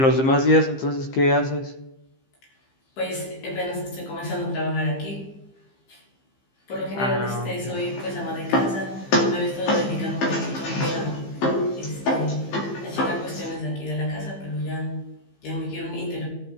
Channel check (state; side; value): late; right; 15 ms